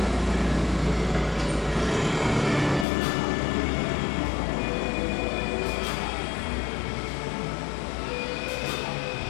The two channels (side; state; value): right; drops out; at 2.9 s